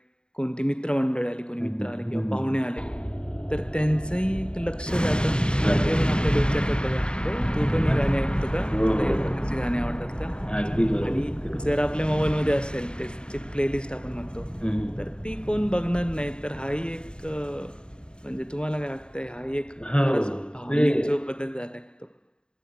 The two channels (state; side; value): late; right; 0.049 ms